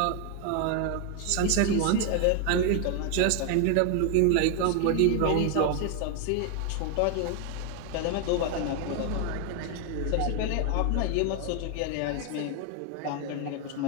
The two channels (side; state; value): both; different; correlation 0.01